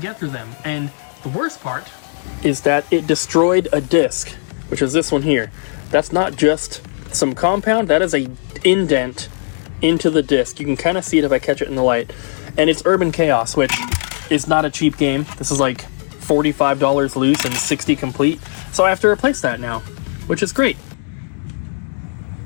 get through them. And the worst part is that it destroyed a disc, which is this one here. That's not just some compound, that is a indent into the disc. You can kind of see it if I catch it in the light. And it's Urban Chaos, which is not a cheap game. This is like $45 loose and $60 complete. So I have to replace that now, which is great.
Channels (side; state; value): right; silent; digital silence